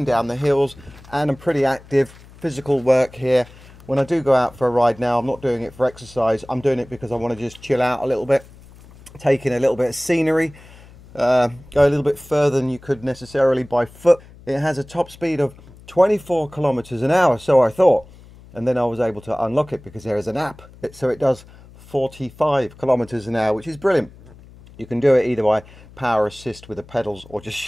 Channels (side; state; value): left; noise; hum, 22 dB below the sound